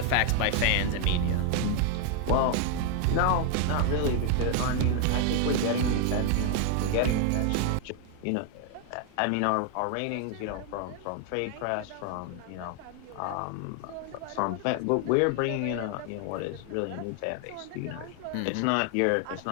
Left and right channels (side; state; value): both; different; correlation 0.00